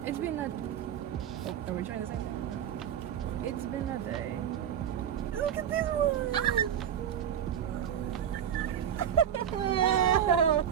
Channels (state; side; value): quieter; left; 9.2 dB